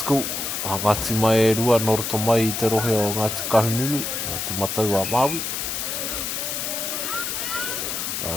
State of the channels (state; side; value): noise; left; hiss, 3 dB below the sound